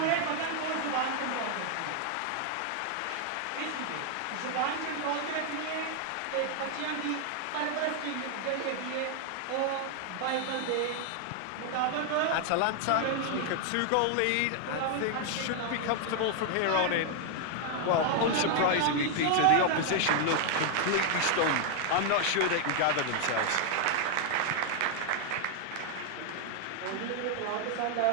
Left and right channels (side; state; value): both; different; correlation 0.00